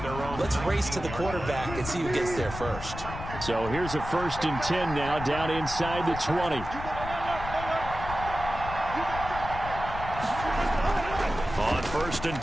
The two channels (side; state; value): left; noise; rumble, 9 dB below the sound